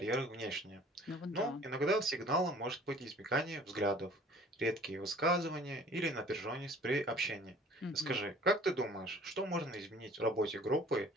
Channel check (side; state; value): both; normal; correlation 0.51